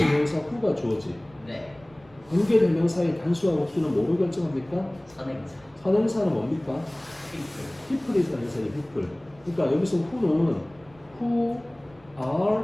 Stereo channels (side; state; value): right; noise; rumble, 28 dB below the sound